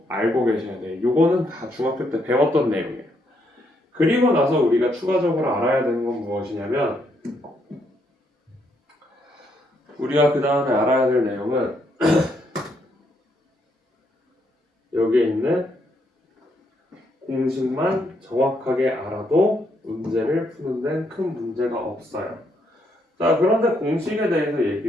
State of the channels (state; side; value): normal; both; correlation 0.75